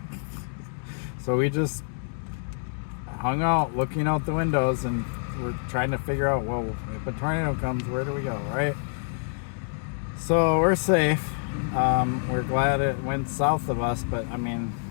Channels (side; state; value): right; silent; digital silence